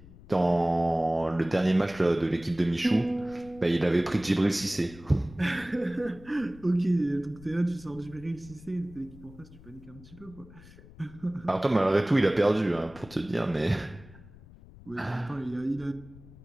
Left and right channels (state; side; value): noise; left; rumble, 21 dB below the sound